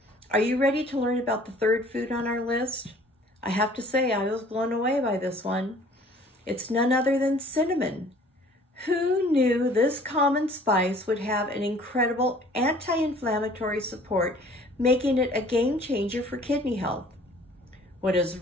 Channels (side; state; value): both; normal; correlation 0.53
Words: are you ready to learn about the 3rd food on our list? I have to say, I was blown away by this one. It's none other than cinnamon. Who knew this common spice would have an incredible anti-inflammatory support, making it a game changer for kidney health? What has